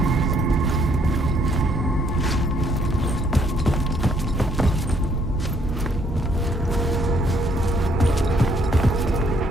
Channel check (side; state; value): both; normal; correlation 0.67